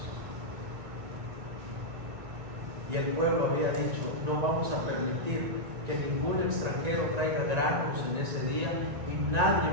Y el pueblo había dicho, no vamos a permitir que ningún extranjero traiga granos en ese día y nadie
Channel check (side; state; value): left; late; 1.9 ms